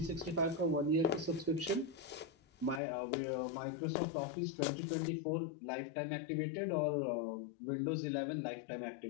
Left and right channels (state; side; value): drops out; right; at 2.8 s